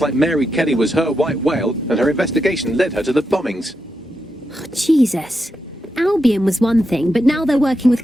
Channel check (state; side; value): normal; both; correlation 0.85